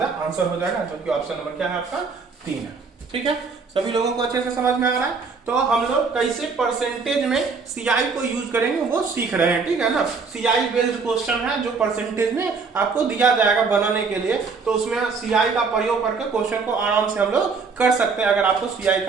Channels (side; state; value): left; quieter; 4.8 dB